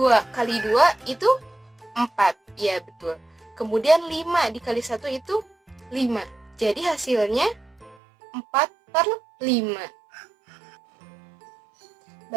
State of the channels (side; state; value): left; drops out; at 8.0 s